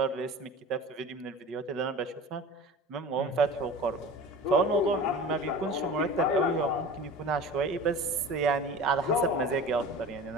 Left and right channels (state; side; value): normal; both; correlation 0.37